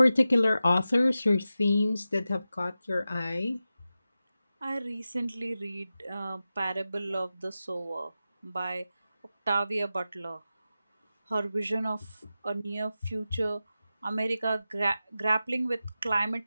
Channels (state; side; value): inverted; both; correlation -0.93